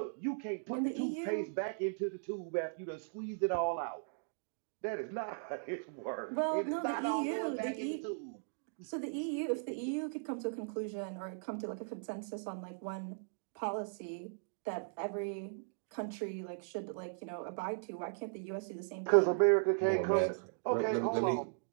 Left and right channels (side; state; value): left; silent; digital silence